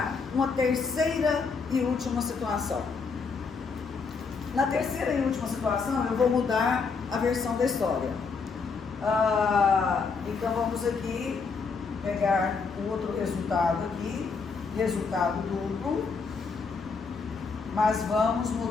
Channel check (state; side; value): quieter; right; 4.9 dB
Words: uma terceira e última situação. Na terceira e última situação, eu vou mudar a versão da história. Então vamos aqui pegar o outro resultado aqui, resultado duplo, mas vamos